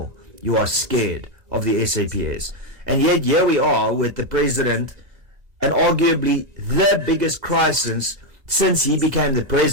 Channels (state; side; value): late; left; 1.9 ms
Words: you are scared of the SAPS. And yet here we are with the president, and arguably the biggest crisis since he became the